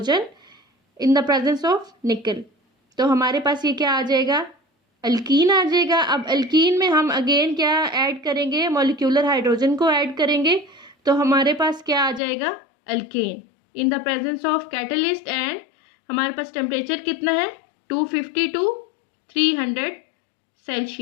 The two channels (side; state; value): right; drops out; at 12.2 s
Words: in the presence of निकल। तो हमारे पास ये क्या आ जाएगा? अल्कीन आ जाएगा। अब अल्कीन में हम अगेन क्या ऐड करेंगे? मॉलिक्यूलर हाइड्रोजन को ऐड करेंगे, तो हमारे पास क्या आ जाएगा? Alkane in the presence of catalyst. And हमारे पास टेम्परेचर कितना है? 250 to 300